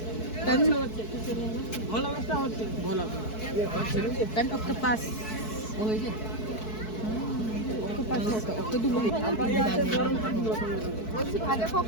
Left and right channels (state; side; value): late; right; 4.6 ms